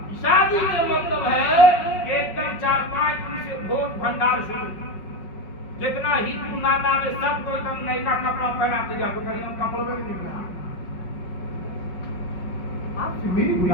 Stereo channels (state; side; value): late; right; 5.5 ms